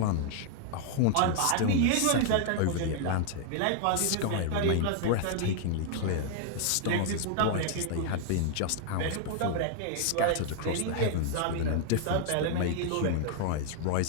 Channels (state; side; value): different; both; correlation -0.01